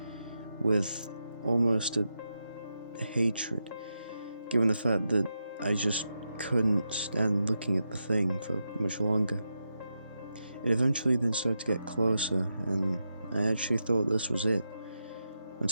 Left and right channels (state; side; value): inverted; both; correlation -0.86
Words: with almost a hatred, given the fact that I just couldn't stand looking at the thing for much longer. It eventually then started to get closer, and I actually thought this was it,